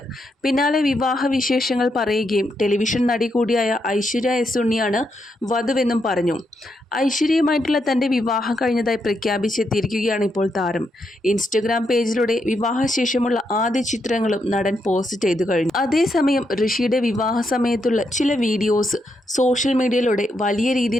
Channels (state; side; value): normal; both; correlation 0.81